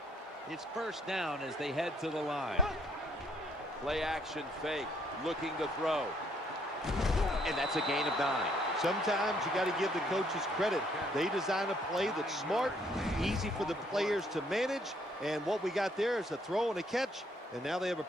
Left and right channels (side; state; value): both; normal; correlation 0.67